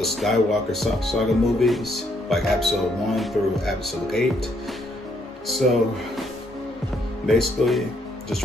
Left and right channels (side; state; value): both; normal; correlation 0.71